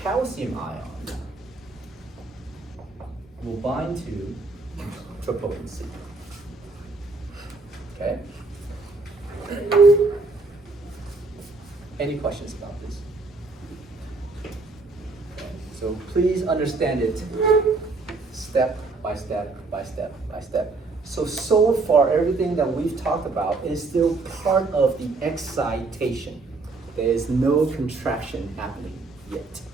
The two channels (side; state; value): left; quieter; 3.6 dB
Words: ion will bind to troponin C. Okay? Any questions about this? Okay. So please understand it step by step by step by step. So far, everything that we've talked about is still part of the excitation. There is no contraction happening yet.